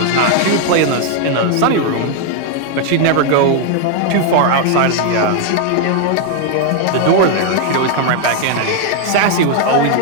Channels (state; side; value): different; both; correlation 0.00